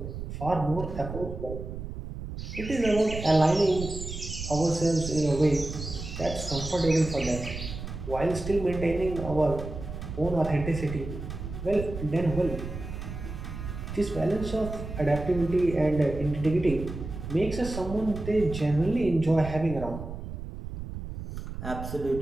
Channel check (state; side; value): noise; right; rumble, 8 dB below the sound